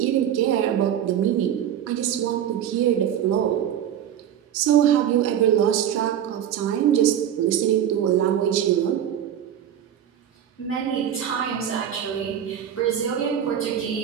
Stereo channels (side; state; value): left; quieter; 9.9 dB